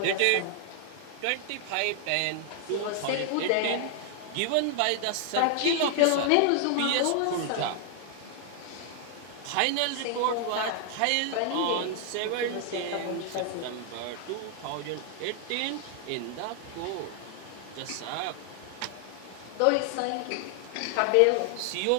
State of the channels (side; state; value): both; different; correlation 0.00